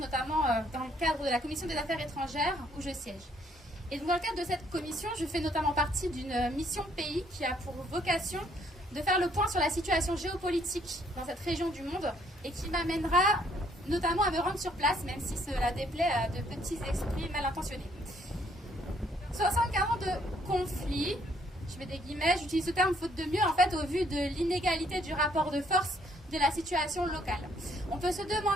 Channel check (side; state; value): both; normal; correlation 0.67